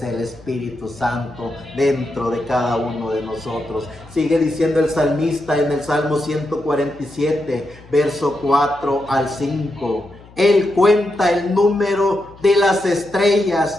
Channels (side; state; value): left; noise; hum, 23 dB below the sound